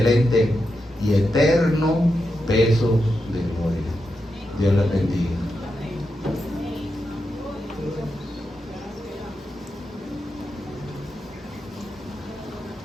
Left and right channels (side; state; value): both; normal; correlation 0.87